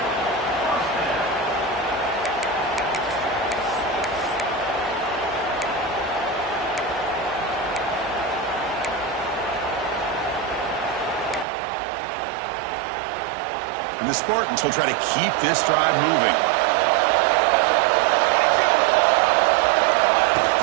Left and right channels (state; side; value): drops out; left; at 11.5 s